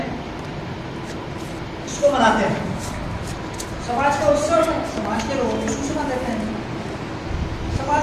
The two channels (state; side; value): identical; both; correlation 1.00